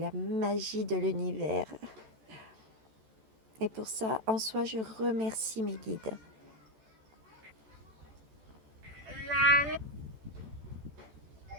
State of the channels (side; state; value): left; late; 14 ms